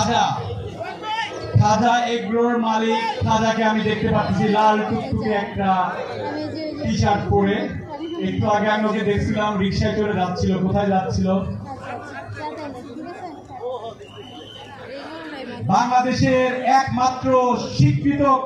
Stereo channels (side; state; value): both; identical; correlation 1.00